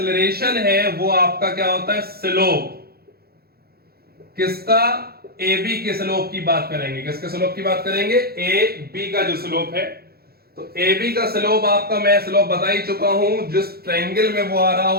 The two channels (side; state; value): left; late; 0.45 ms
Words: है वो आपका क्या होता है, स्लोप। किसका, ए बी के स्लोप की बात करेंगे। किसके स्लोप की बात करेंगे, ए बी का जो स्लोप है। तो ए बी का स्लोप आपका मैं स्लोप बता ही चुका हूं, जिस ट्रायंगल में वो आ रहा